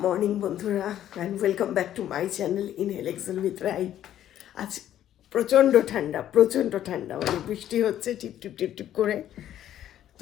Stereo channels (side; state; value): right; quieter; 11.5 dB